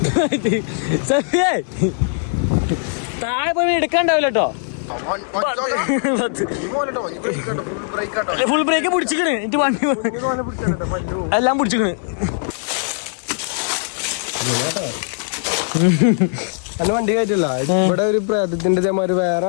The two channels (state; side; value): silent; right; digital silence